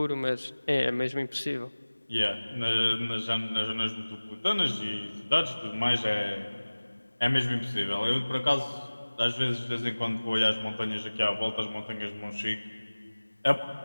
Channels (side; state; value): both; inverted; correlation -1.00